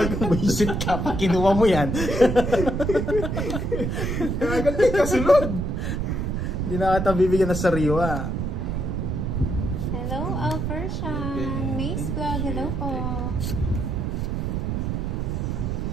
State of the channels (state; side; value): noise; right; rumble, 1 dB below the sound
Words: Buisit ka, pag kinuha mo yan. Agad may kasunod. Hindi na kita bibigyan ng sariwa. Hello, Alfershan. Mace Vlog, hello po.